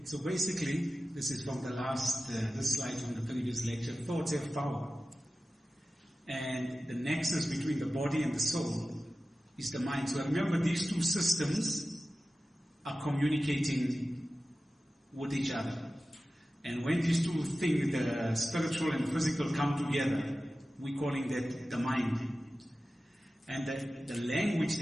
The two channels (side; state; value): both; normal; correlation 0.95